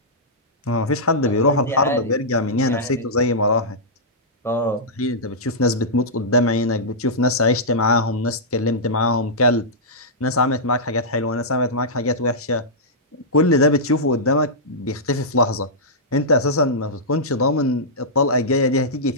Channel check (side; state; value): both; normal; correlation -0.12